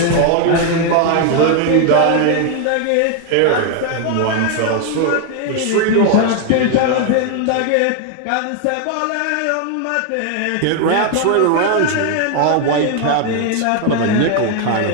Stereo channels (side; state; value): both; different; correlation 0.01